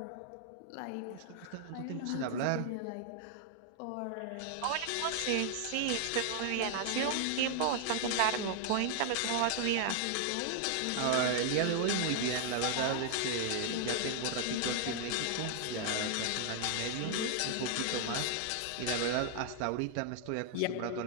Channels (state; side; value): different; both; correlation 0.00